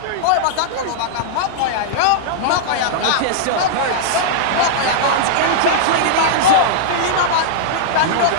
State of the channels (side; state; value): both; different; correlation -0.01